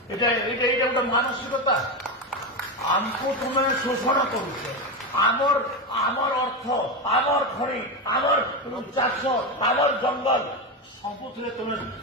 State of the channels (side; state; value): both; normal; correlation 0.14